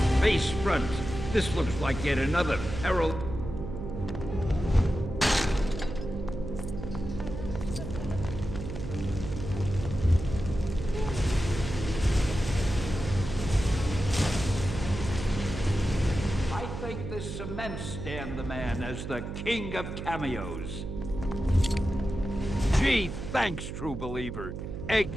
Face front. This looks like yet another peril. I think this cements Stan the Man as the king of cameos. Gee, thanks, true believer.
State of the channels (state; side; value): noise; right; hum, 7 dB below the sound